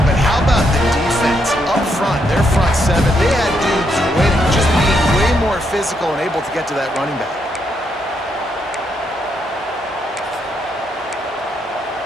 but how about the defense up front? Their front 7, they had dudes waiting, just being way more physical and able to get to that running back.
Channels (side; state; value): both; normal; correlation 0.78